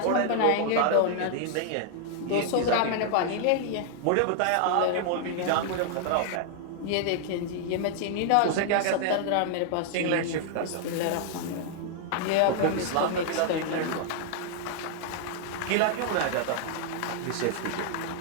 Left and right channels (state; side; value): different; both; correlation 0.00